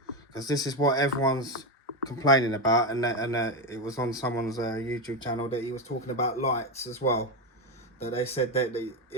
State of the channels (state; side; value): normal; both; correlation 0.12